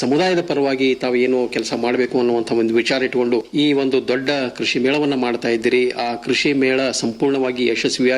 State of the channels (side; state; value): both; identical; correlation 1.00